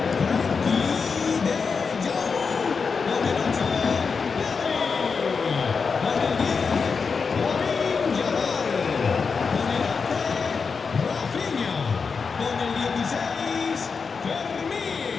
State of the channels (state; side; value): quieter; right; 5.3 dB